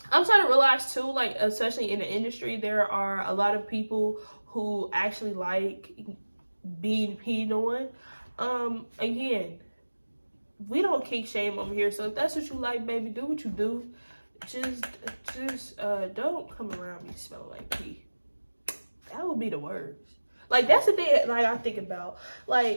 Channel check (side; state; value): both; inverted; correlation -1.00